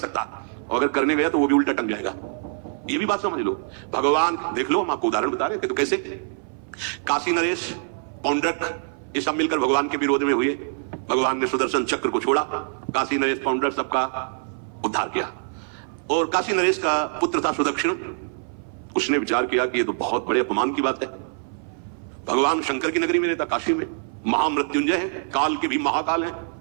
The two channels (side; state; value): left; silent; 58 dB below the other